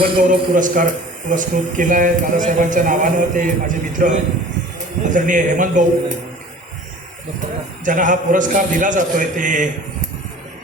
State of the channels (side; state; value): both; normal; correlation 0.45